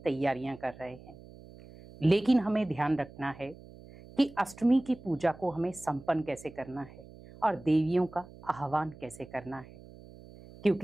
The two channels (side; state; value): right; noise; hum, 19 dB below the sound